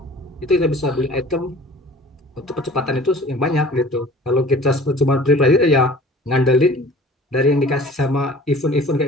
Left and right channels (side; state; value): both; normal; correlation 0.47